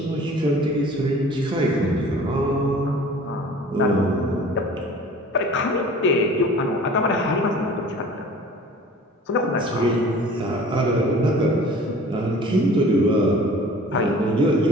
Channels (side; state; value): both; normal; correlation 0.46